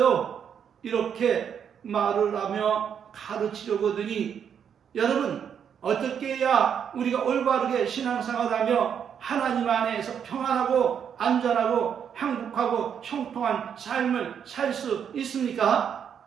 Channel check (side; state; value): left; quieter; 8.0 dB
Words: 이렇게 말을 하며 가르치려고 하더니 여러분 어떻게 해야 우리가 올바르게 신앙생활하며 하나님 안에서 평안하고 안전하고 행복하고 형통한 삶을 살 수 있습니까?